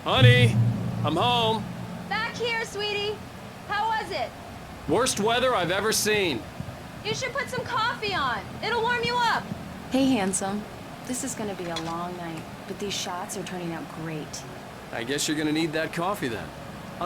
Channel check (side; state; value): both; identical; correlation 1.00